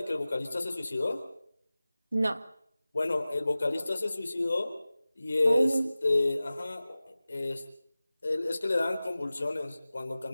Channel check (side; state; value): both; inverted; correlation -0.97